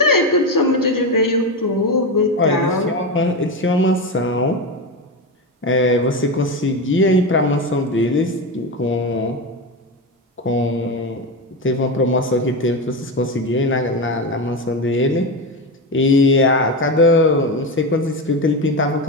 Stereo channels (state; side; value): normal; both; correlation 0.17